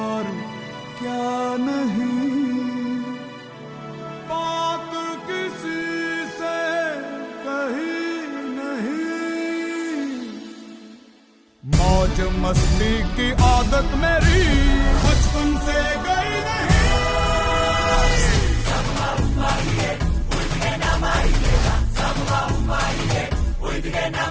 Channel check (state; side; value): identical; both; correlation 1.00